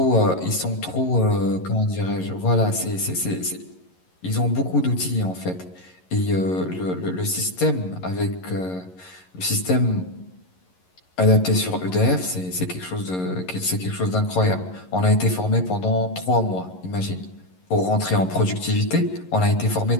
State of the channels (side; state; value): right; late; 11 ms